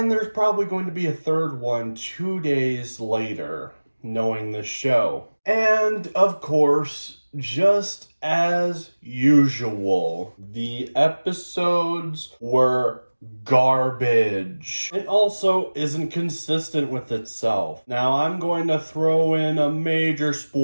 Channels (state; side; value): inverted; both; correlation -1.00